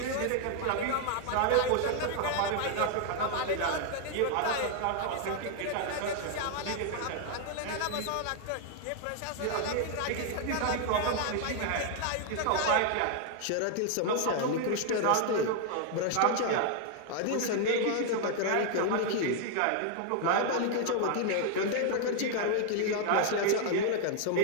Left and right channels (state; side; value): different; both; correlation 0.00